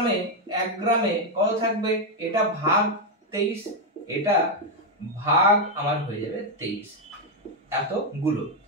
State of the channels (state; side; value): normal; both; correlation 0.03